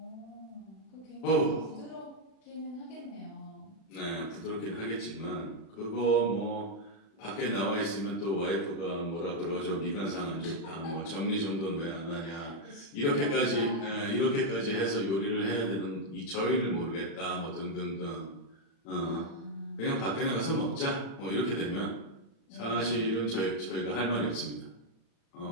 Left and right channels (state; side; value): late; right; 36 ms